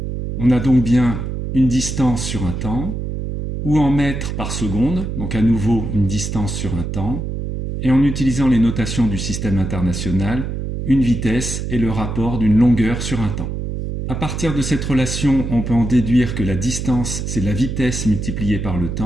On a donc bien une distance sur un temps, ou en mètres par seconde, donc à nouveau une distance sur un temps, et en utilisant les notations du système international, une vitesse est le rapport d'une longueur sur un temps. À partir de cette relation, on peut en déduire que la distance, c'est la vitesse multipliée par le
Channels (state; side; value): noise; right; hum, 4 dB below the sound